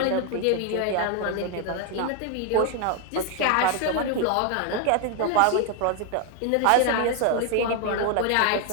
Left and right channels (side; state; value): both; different; correlation 0.01